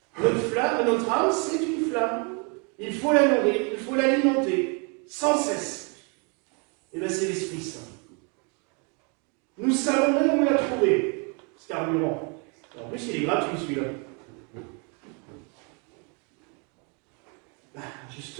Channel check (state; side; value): quieter; left; 34.7 dB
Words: Notre flamme, notre âme, c'est une flamme. Il faut la nourrir, il faut l'alimenter, sans cesse. Et bien c'est l'Esprit Saint. Nous savons même où la trouver, ce carburant. En plus, il est gratuit celui-là. Ben,